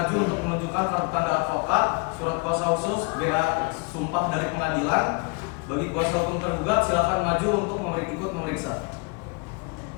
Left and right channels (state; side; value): quieter; right; 31.5 dB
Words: untuk menunjukkan kartu tanda advokat, surat kuasa khusus, BA sumpah dari pengadilan. Bagi kuasa hukum tergugat, silakan maju untuk ikut memeriksa.